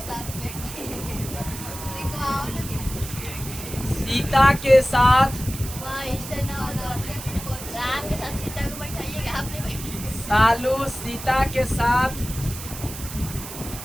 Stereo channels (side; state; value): right; noise; hiss, 11 dB below the sound